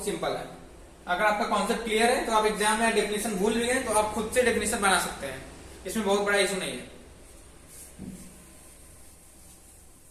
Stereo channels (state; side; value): identical; both; correlation 1.00